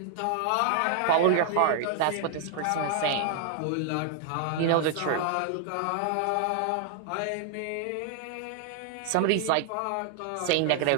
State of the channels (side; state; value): both; different; correlation 0.00